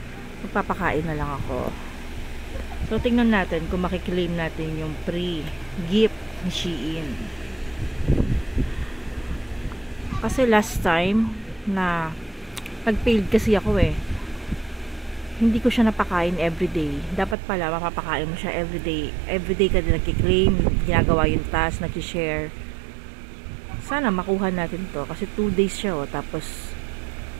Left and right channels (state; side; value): drops out; left; at 17.4 s